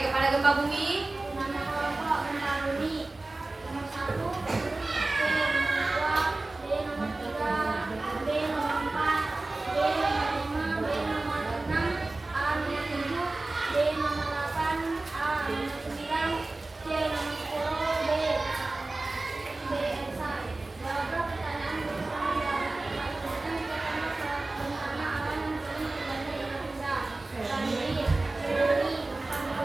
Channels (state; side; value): quieter; left; 3.1 dB